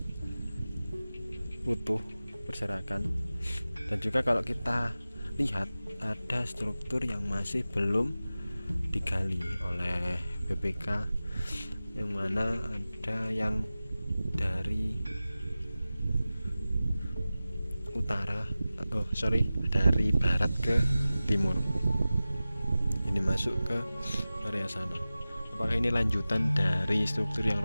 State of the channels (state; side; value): inverted; both; correlation -0.96